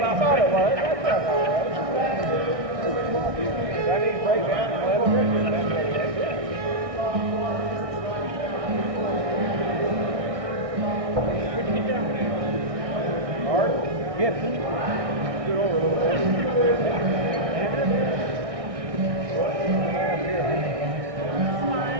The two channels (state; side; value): late; left; 1.6 ms